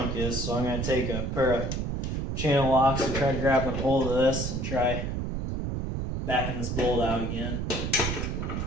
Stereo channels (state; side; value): noise; right; rumble, 2 dB below the sound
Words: is, so I'm going to take a pair of channel locks and try grabbing a hold of this and try backing this bolt out again.